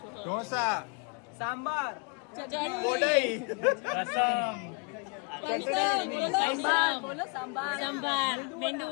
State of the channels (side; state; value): right; quieter; 32.9 dB